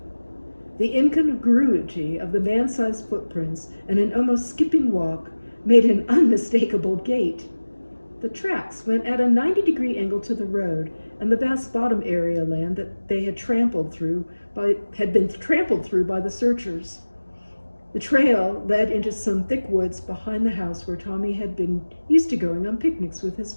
The incongruity of the man-sized footprints and an almost skipping walk made an unmistakable gait. The tracks went at a 90-degree angle to the road, and the vast bottom area land that they had been trampled through by the searchers. The trail led into some thick woods behind the house where Tommy had been used to going on picnics with his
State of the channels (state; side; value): inverted; both; correlation -1.00